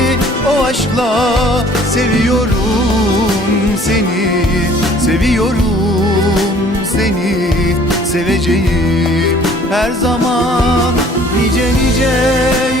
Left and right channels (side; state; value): both; normal; correlation 0.54